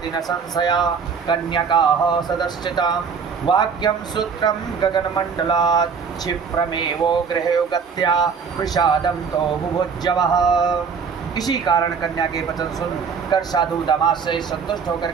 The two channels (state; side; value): quieter; left; 6.0 dB